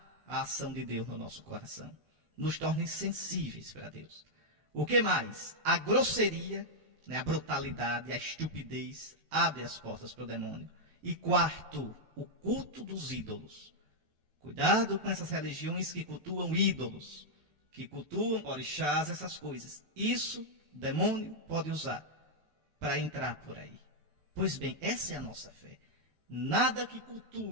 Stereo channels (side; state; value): left; late; 14 ms